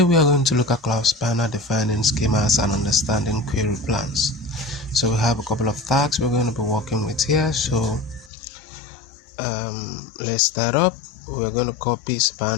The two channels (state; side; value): drops out; right; at 8.3 s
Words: we are going to look at Cloud Spanner, defining schemas and understanding query plans. So we have a couple of tasks we're going to be working with here. So let's start up. We're going to copy